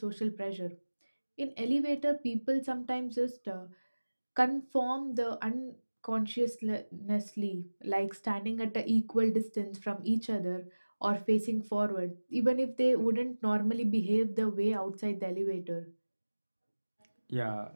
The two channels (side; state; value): both; inverted; correlation -1.00